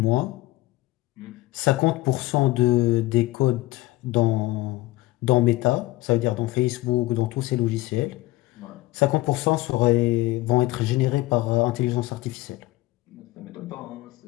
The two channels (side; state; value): right; quieter; 18.8 dB